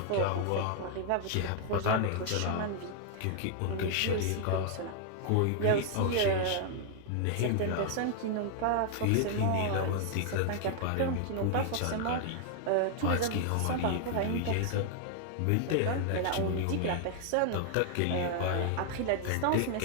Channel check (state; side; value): different; both; correlation 0.00